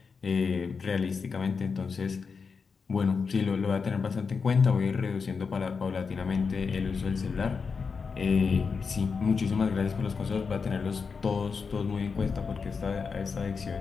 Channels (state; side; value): quieter; right; 5.3 dB